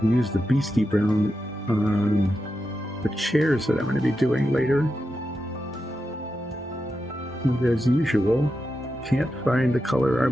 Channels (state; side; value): normal; both; correlation 0.88